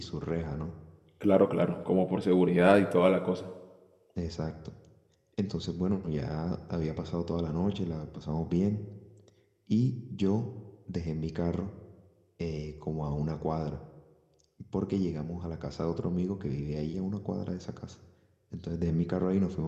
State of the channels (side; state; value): both; identical; correlation 1.00